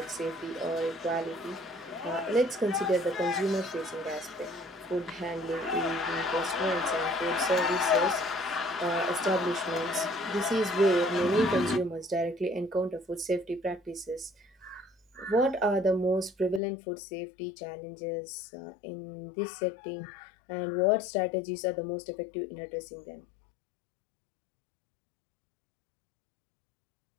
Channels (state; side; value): drops out; right; at 16.6 s